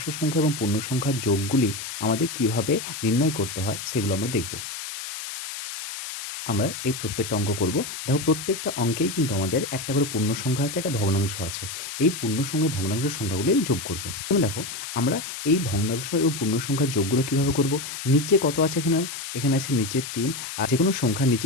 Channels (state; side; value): noise; left; hiss, 8 dB below the sound